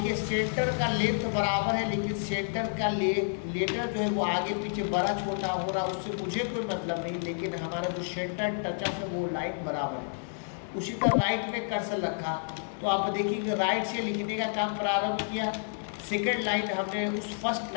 सेंटर का लेंथ बराबर है, लेकिन सेंटर का लेटर जो है वो आगे पीछे बड़ा छोटा हो रहा, उससे मुझे कोई मतलब नहीं, लेकिन हमारा जो सेंटर टचअप है वो लाइन बराबर है। उसी तरह राइट में कर्सर रखा तो आप देखिए राइट से लिखने का काम प्रारंभ किया, सेकेंड लाइन हमने उस फर्स्ट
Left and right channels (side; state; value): right; silent; digital silence